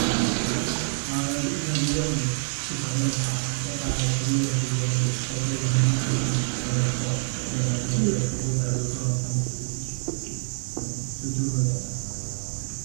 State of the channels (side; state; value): left; silent; digital silence